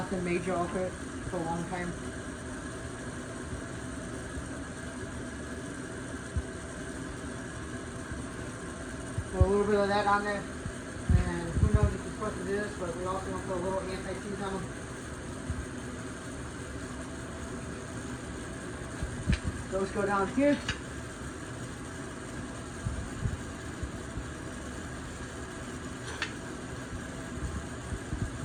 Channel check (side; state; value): both; identical; correlation 1.00